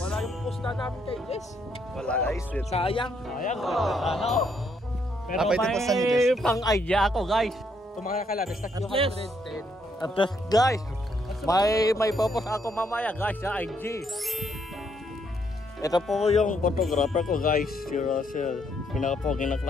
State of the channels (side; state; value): both; normal; correlation 0.73